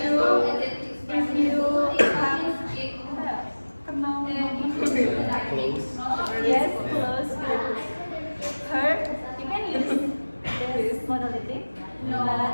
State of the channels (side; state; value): both; inverted; correlation -1.00